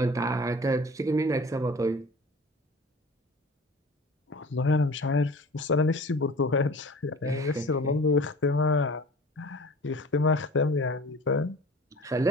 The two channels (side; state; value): both; normal; correlation 0.42